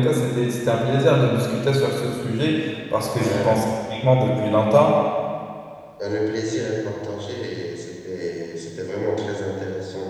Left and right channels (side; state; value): both; identical; correlation 1.00